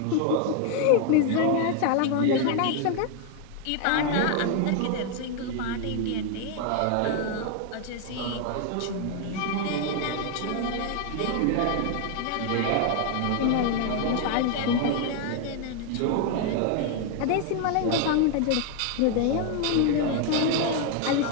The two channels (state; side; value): different; both; correlation 0.00